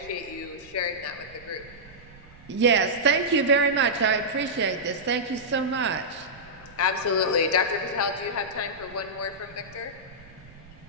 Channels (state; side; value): noise; right; rumble, 23 dB below the sound